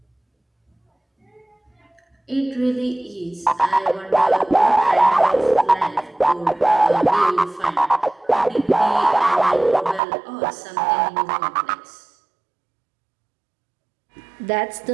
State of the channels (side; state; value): left; drops out; at 10.0 s